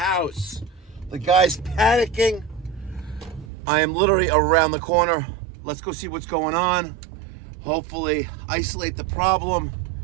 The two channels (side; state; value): left; drops out; at 3.5 s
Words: The guy's panicking. I am literally around the corner. Let's go see what's going on. Hopefully isolate the problem